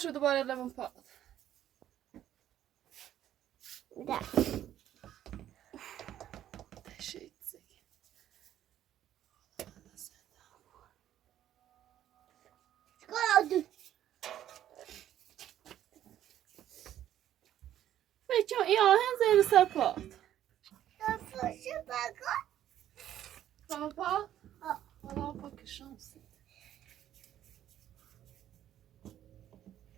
دوباره لبن پاد شيء زي فيتشو يا هن زي السباط سباط والله بك الشمس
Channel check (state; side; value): quieter; left; 11.6 dB